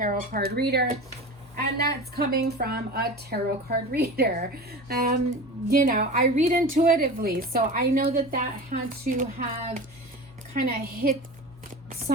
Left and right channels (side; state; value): both; normal; correlation 0.32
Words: card reader, and that's coming from a tarot card reader. You know, I read intuitively, so I know that had to have kind of hit